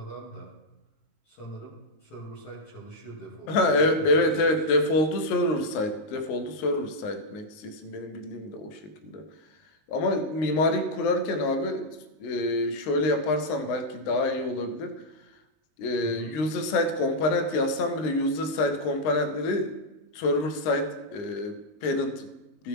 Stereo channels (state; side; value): late; right; 19 ms